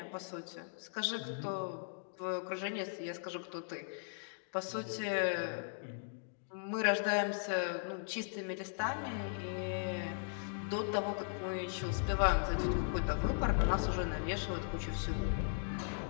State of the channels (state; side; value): silent; right; digital silence